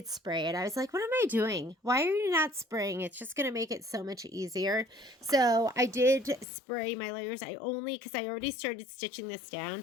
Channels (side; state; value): right; drops out; at 6.5 s